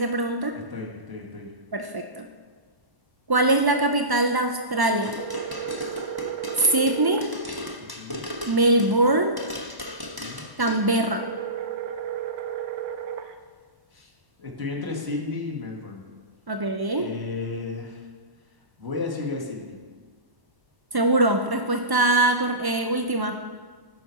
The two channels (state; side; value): late; left; 1.1 ms